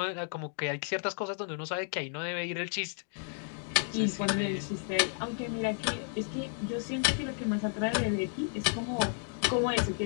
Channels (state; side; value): silent; right; 56 dB below the other